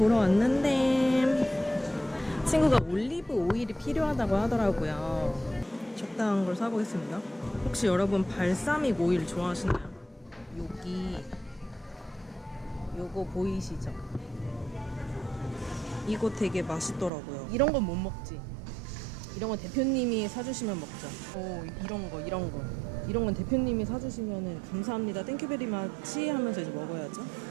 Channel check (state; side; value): drops out; left; at 17.1 s